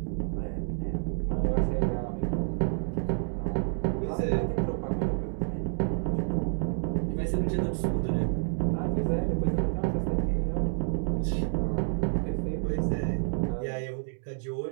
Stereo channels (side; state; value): left; silent; digital silence